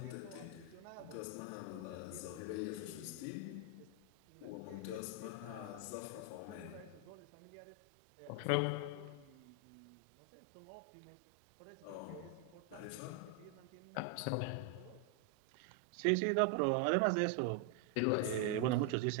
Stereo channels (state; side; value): different; both; correlation 0.01